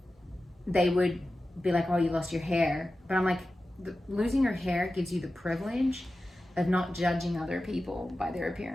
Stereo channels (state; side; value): normal; both; correlation 0.94